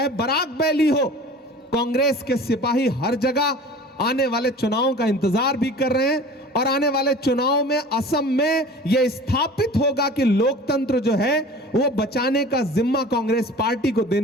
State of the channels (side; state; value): both; normal; correlation 0.41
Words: बराक वैली हो। कांग्रेस के सिपाही हर जगह आने वाले चुनावों का इंतजार भी कर रहे हैं। और आने वाले चुनाव में असम में यह स्थापित होगा कि लोकतंत्र जो है वो बचाने का जिम्मा कांग्रेस पार्टी को